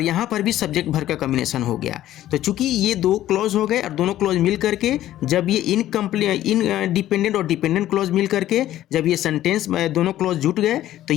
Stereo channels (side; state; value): right; quieter; 13.4 dB